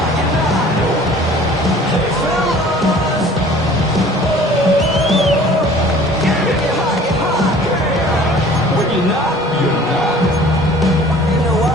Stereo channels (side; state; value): both; normal; correlation 0.49